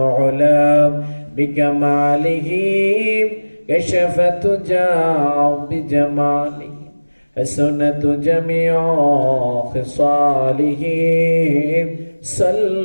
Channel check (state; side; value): inverted; both; correlation -1.00